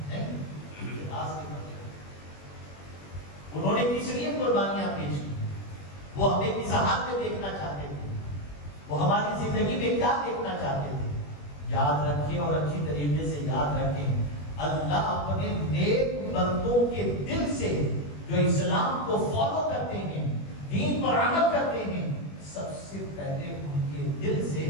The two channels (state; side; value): late; right; 21 ms